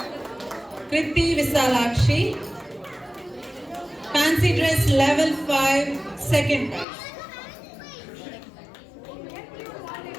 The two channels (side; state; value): right; drops out; at 6.9 s